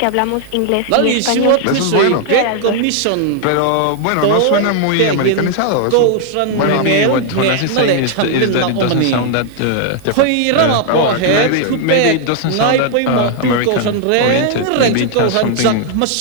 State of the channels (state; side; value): different; both; correlation 0.00